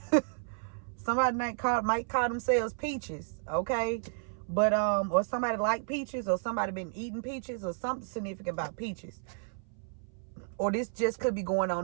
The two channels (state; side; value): silent; left; 56 dB below the other